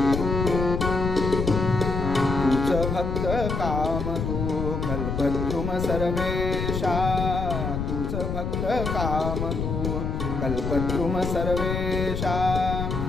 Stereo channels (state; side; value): noise; left; rumble, 2 dB below the sound